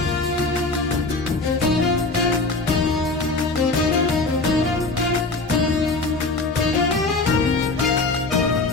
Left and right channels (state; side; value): quieter; right; 3.4 dB